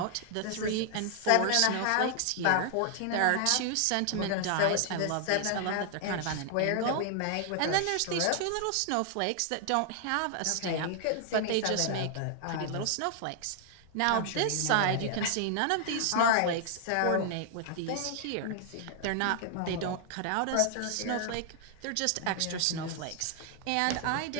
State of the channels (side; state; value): both; different; correlation 0.00